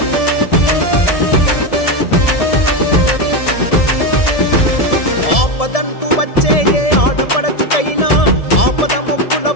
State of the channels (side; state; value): right; late; 1.7 ms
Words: ఆపదంటూ వచ్చే ఏ ఆడపడచుకైనా ఆపద మొక్కుల